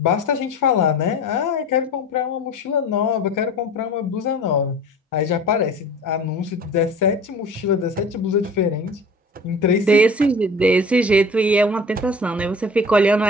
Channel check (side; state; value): both; normal; correlation 0.40